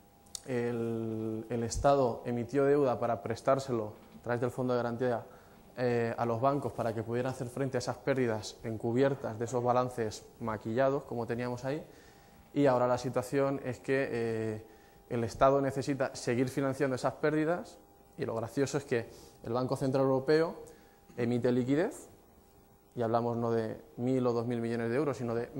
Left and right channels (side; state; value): both; identical; correlation 1.00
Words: El Estado emitió deuda para prestárselo a través del Fondo de Garantía a los bancos para que pudieran hacer frente a esas pérdidas encubiertas de esos balances maquillados, como teníamos ahí, y ahora la situación es que el Estado necesita seguir financiando esas pérdidas y lo gracioso es que el Banco Central Europeo emite liquidez, y hablamos no de 1.000 o 2.000 millones de euros, sino de